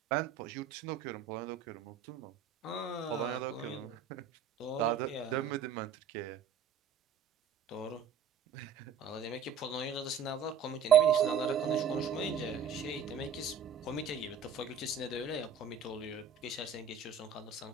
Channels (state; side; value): quieter; left; 6.4 dB